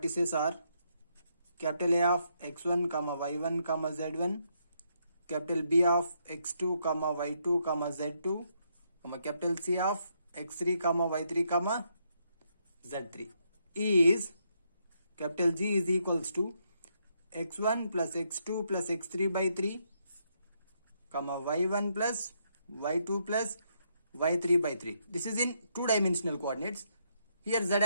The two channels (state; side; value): inverted; both; correlation -0.76